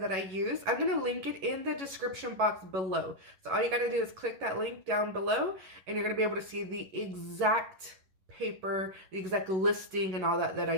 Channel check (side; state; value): left; late; 11 ms